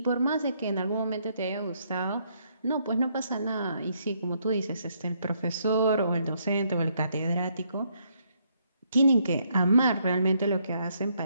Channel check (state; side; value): inverted; both; correlation -0.72